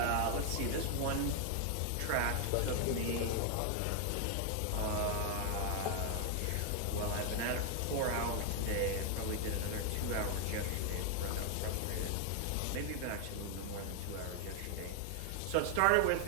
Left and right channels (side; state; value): both; different; correlation 0.00